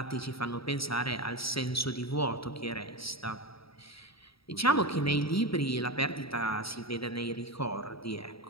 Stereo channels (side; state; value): right; late; 0.76 ms